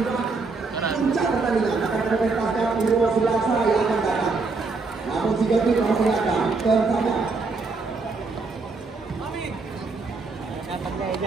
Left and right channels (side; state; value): left; quieter; 4.1 dB